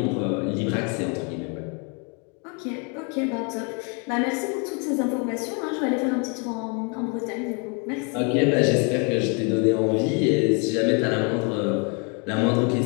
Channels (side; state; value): right; quieter; 35.3 dB